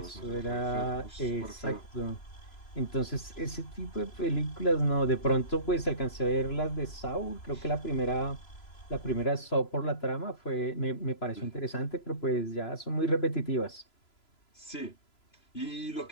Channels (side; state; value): right; late; 3.0 ms